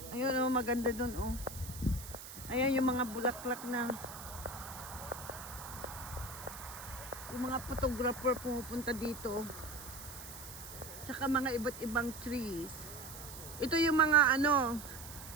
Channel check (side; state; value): right; noise; hiss, 13 dB below the sound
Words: Ayun oh, maganda doon oh. Ayan yung mga bulaklak na yung mga photographer pumupunta dito. Tsaka mga iba't ibang trees. Ito yung mga